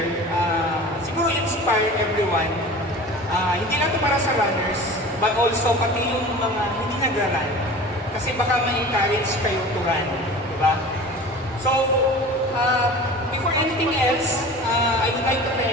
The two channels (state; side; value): normal; both; correlation 0.38